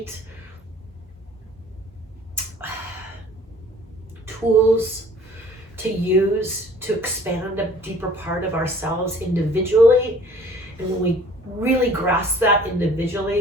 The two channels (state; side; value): normal; both; correlation 0.51